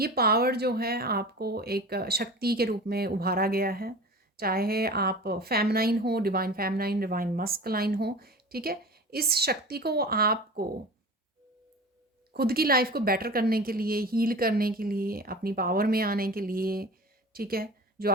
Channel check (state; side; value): normal; both; correlation 0.36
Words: पावर जो है आपको एक शक्ति के रूप में उभारा गया है, चाहे आप फेमिनाइन हो, डिवाइन फेमिनाइन, डिवाइन मस्कुलाइन हो, ठीक है। इस शक्ति को आपको खुद की लाइफ को बेटर करने के लिए, हील करने के लिए, अपनी पावर में आने के लिए, ठीक है, जो